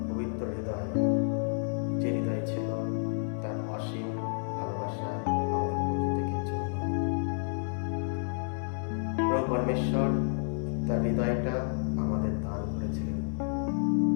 পবিত্র হৃদয়, যে হৃদয় ছিল তার অসীম ভালোবাসা আমাদের প্রত্যেকের জন্য। প্রভু পরমেশ্বর তার হৃদয়টা আমাদের দান করেছিলেন।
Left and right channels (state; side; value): silent; right; digital silence